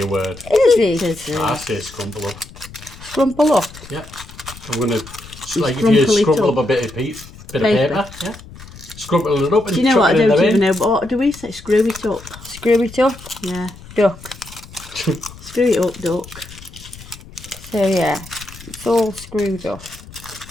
a word. Is it? I say scrumple up. Scrumple up. Yeah. I'm going to, like if you scrumple up a bit of paper, yeah. Scrumple it up and do you know what? I chuck it in don't the even bin. know. But what do we say? Screw it up. Screw it up. Yeah. Duck. Screw it up, duck. So yeah, it's all screwed up.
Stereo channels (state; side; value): noise; left; rumble, 18 dB below the sound